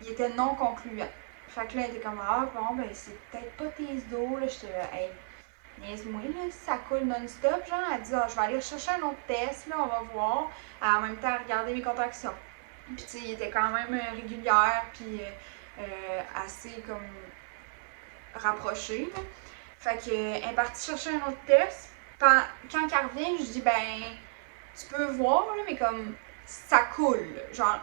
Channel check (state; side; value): silent; left; 57 dB below the other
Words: il était non concluant. Fait que là, elle était comme, ah bon, ben c'est peut-être pas tes os, là. J'étais là, hey, niaise-moi, là, si ça coule non-stop, genre. Elle dit, ah, je vais aller chercher un autre test, là, on va voir. En même temps, regarder mes contractions. Puis, tu sais, il était quand même régulière, puis assez comme rapproché, là. Fait qu'elle est partie chercher un autre test. Quand elle revient, je dis, ben, tu peux voir, là, mais comme, ça coule. Genre,